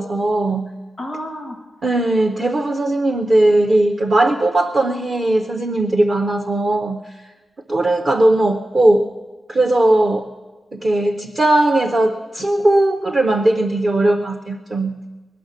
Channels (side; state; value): both; normal; correlation 0.93